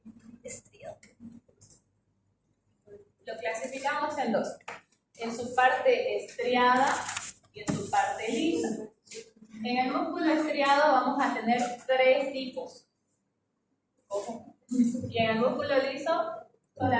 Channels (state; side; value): identical; both; correlation 1.00